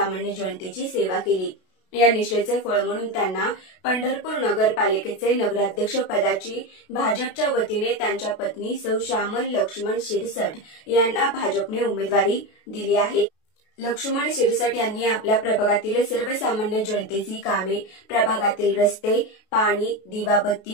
जनतेची सेवा केली। या निष्ठेचे फळ म्हणून त्यांना पंढरपूर नगरपालिकेचे नगराध्यक्ष पदाची भाजपच्या वतीने त्यांच्या पत्नी सौ श्यामल लक्ष्मण सिरसट यांना भाजपने उमेदवारी दिली आहे। लक्ष्मण सिरसट यांनी आपल्या प्रभागातील सर्वसामान्य जनतेची कामे, प्रभागातील रस्ते, पाणी,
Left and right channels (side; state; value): right; late; 32 ms